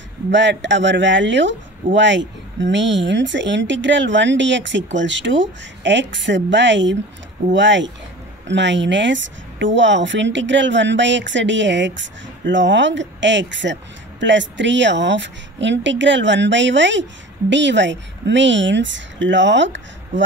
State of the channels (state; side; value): normal; both; correlation 0.38